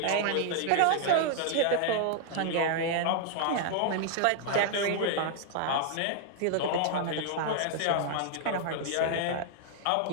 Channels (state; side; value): different; both; correlation 0.00